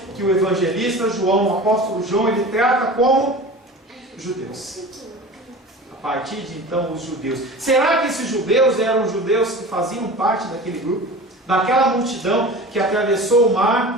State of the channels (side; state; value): both; normal; correlation 0.36